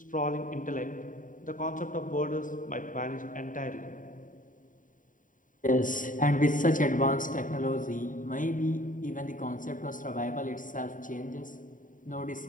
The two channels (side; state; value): right; late; 0.38 ms